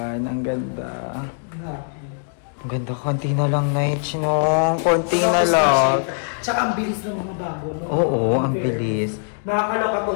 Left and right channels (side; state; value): right; silent; digital silence